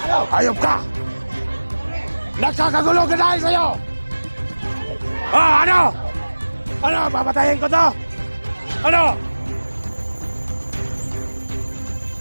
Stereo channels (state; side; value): inverted; both; correlation -1.00